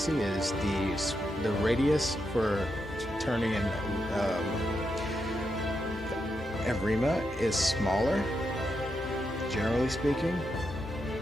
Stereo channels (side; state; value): both; normal; correlation 0.84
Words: is the radius for turning in Rima is smaller, generally speaking.